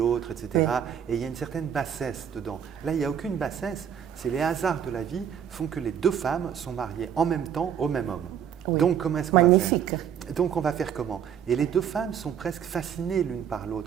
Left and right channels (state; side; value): quieter; left; 8.7 dB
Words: etc. Oui. Et il y a une certaine bassesse dedans. Là, il n'y a aucune bassesse. C'est les hasards de la vie font que les deux femmes sont mariées en même temps au même homme. Oui. Donc, comment est-ce qu'on va faire? Magnifique. Donc, on va faire comment? Et les deux femmes sont presque fascinées l'une par